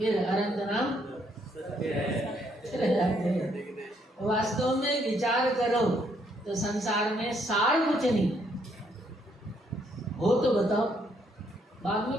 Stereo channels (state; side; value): normal; both; correlation 0.71